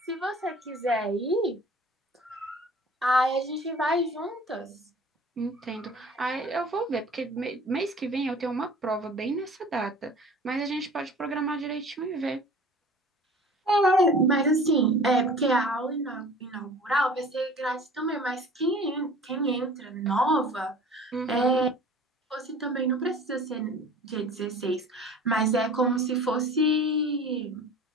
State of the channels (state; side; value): normal; both; correlation 0.44